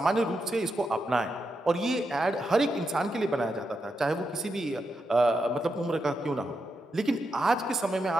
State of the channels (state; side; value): normal; both; correlation 0.85